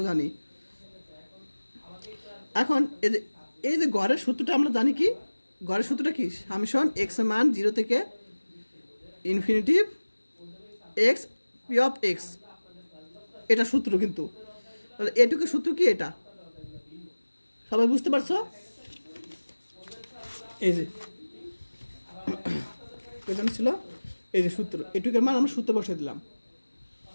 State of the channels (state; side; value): inverted; both; correlation -1.00